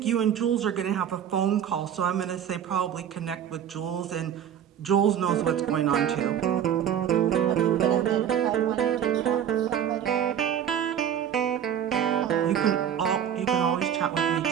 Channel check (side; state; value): left; quieter; 9.4 dB